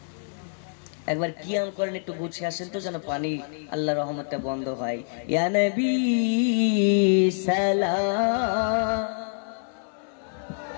একবার কিয়াম করেন, একটু গুছিয়ে আসেন তো যেন পানি আল্লাহ রহমতটা বন্ধ হয়। ইয়া নবী সালাম,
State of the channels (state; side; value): silent; right; 59 dB below the other